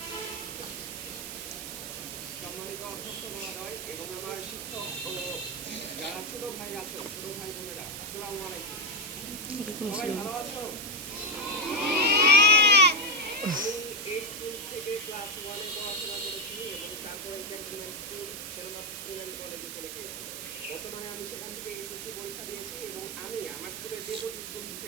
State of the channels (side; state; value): right; noise; hiss, 7 dB below the sound